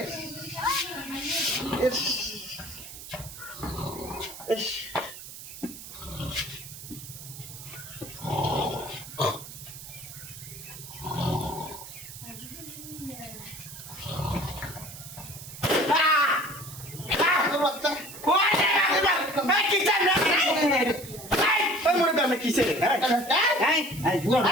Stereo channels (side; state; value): right; noise; hiss, 13 dB below the sound